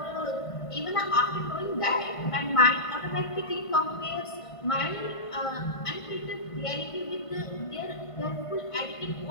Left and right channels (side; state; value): right; late; 1.5 ms